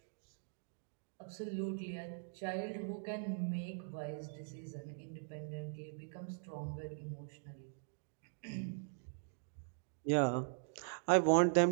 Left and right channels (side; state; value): left; silent; digital silence